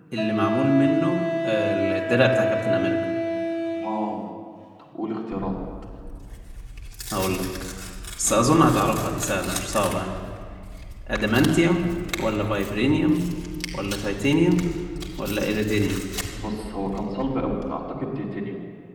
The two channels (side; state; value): both; identical; correlation 1.00